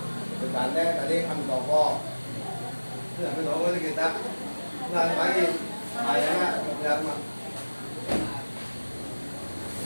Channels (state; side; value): inverted; both; correlation -1.00